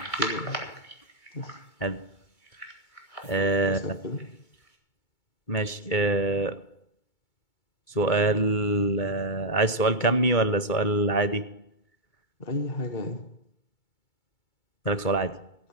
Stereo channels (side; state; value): right; late; 2.2 ms